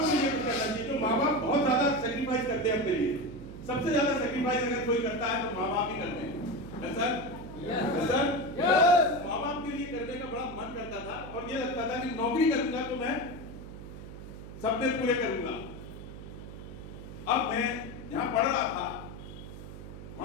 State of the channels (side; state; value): right; noise; hum, 12 dB below the sound